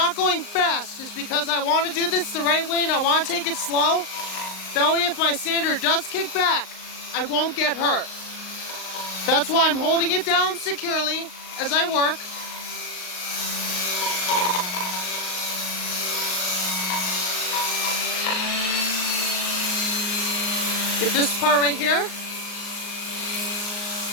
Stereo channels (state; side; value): late; right; 38 ms